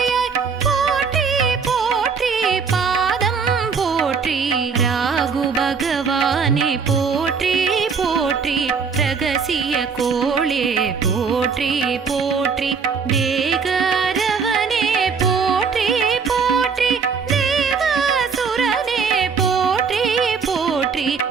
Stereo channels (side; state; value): left; quieter; 5.7 dB